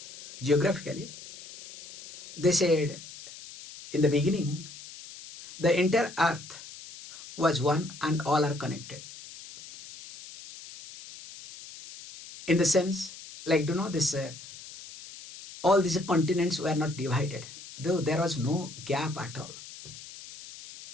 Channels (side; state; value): left; noise; hiss, 15 dB below the sound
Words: Geographically, they said in the beginning, the entire earth was one and all are connected. In the sense, like, this, all these continents were not divided, though there was no gap at all.